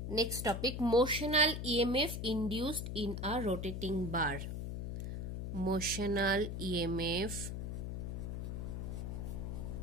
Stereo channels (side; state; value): left; noise; hum, 4 dB below the sound